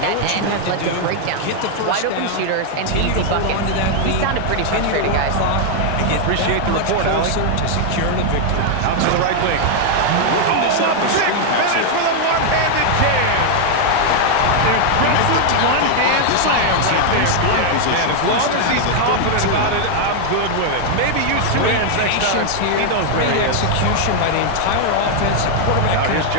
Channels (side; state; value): both; different; correlation 0.00